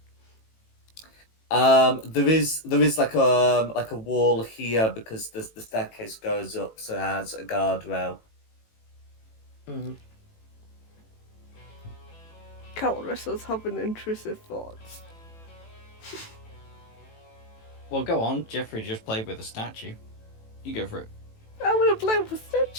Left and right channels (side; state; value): right; late; 18 ms